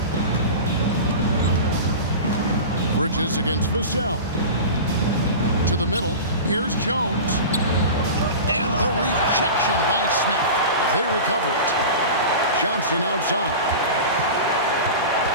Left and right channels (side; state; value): both; inverted; correlation -0.31